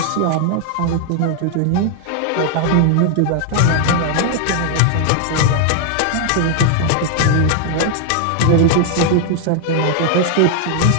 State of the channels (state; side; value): different; both; correlation 0.00